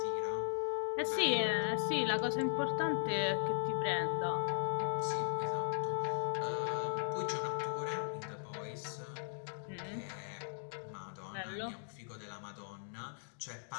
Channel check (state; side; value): silent; right; digital silence